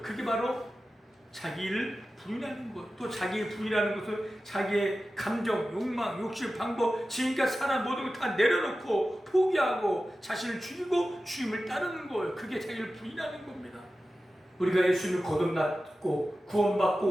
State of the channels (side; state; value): both; normal; correlation 0.94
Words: 그게 바로 자기를 부인하는 것. 또 자기의 부인하는 것은 자기의 감정, 욕망, 욕심, 방법, 지금까지 살아 모든 걸 다 내려놓고 포기하고 자신을 죽이고 주님을 따르는 거예요. 그게 자기를 부인하는 겁니다. 우리가 예수님을 거듭났고